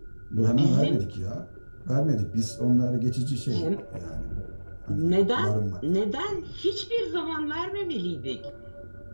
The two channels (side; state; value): both; inverted; correlation -1.00